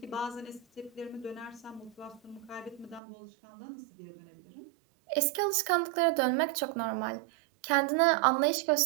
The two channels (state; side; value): drops out; left; at 3.0 s